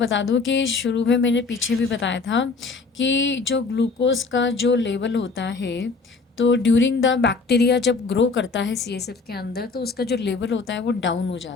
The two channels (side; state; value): right; quieter; 4.2 dB